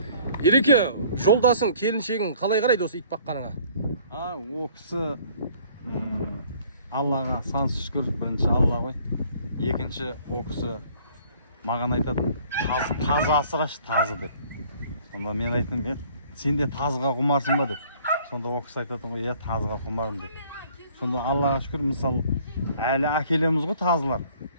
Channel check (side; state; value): both; inverted; correlation -0.56